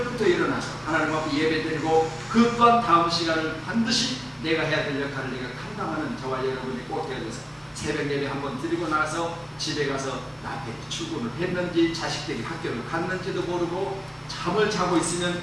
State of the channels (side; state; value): both; identical; correlation 1.00